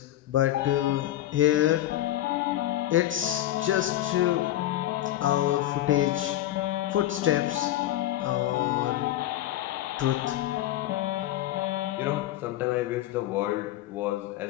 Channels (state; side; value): quieter; right; 13.8 dB